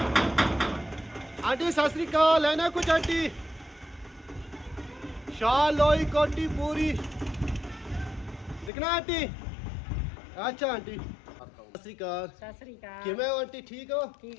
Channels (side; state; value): right; drops out; at 8.7 s